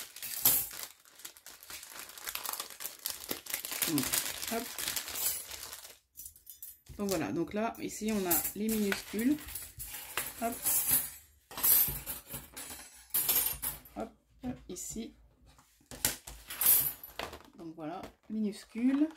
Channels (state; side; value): identical; both; correlation 1.00